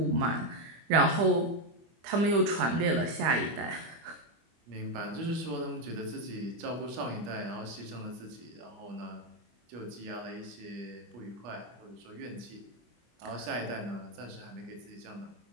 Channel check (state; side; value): late; left; 24 ms